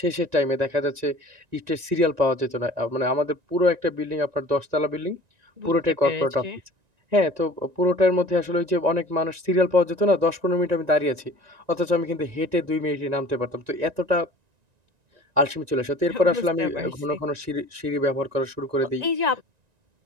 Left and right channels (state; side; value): late; left; 1.9 ms